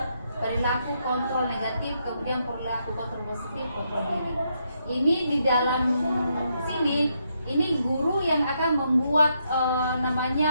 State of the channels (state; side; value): inverted; both; correlation -0.78